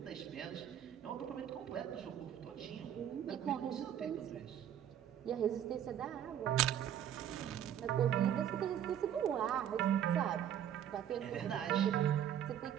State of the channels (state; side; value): quieter; left; 9.9 dB